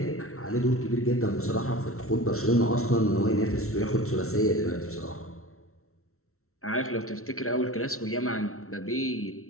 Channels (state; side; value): late; right; 0.63 ms